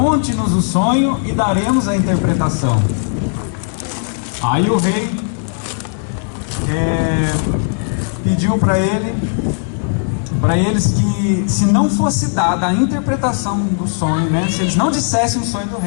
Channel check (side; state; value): right; silent; 67 dB below the other